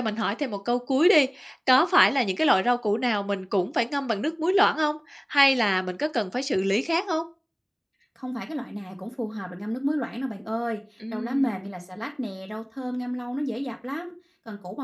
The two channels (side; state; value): both; identical; correlation 1.00